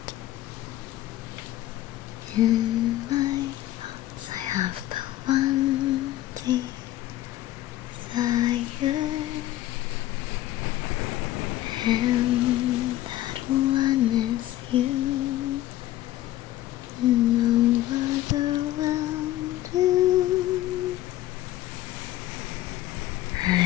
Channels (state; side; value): quieter; right; 14.7 dB